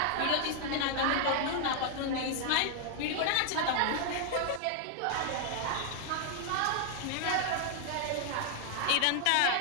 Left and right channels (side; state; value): both; different; correlation 0.00